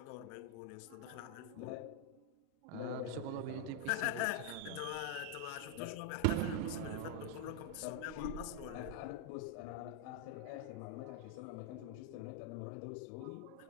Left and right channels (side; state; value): both; different; correlation 0.00